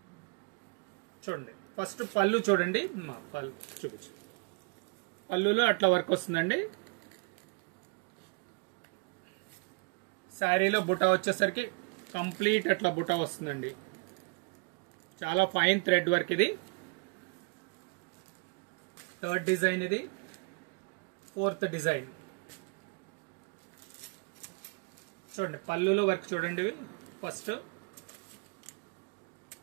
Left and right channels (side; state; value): left; quieter; 34.2 dB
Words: చూడండి. ఫస్ట్ పళ్ళు చూడండి, పళ్ళు చూపించండి. పళ్ళులో అట్లా వర్క్ వస్తుందండి. శారీలో బుటా వచ్చేసరికి కంప్లీట్ అట్లా బుటా వస్తుందండి. చాలా ఫైన్ థ్రెడ్ వర్క్ ఇది. థర్డ్ డిజైన్ ఇది. ఫోర్త్ డిజైన్ చూడండి. పళ్ళులో వర్క్ చూడండి. ఫస్ట్